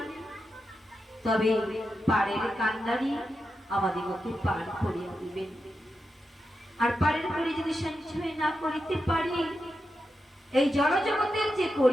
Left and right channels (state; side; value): normal; both; correlation 0.88